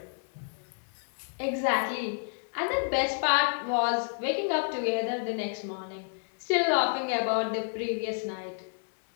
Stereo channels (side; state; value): right; silent; 58 dB below the other